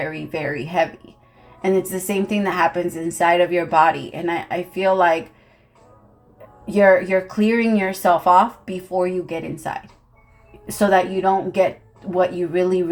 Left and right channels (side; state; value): both; identical; correlation 1.00